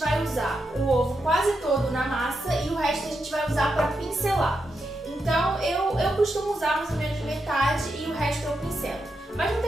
usar o ovo quase todo na massa e o resto a gente vai usar para pincelar. Então eu costumo usar mais ou menos metade e o resto eu pincelo. Mas não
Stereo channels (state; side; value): normal; both; correlation 0.85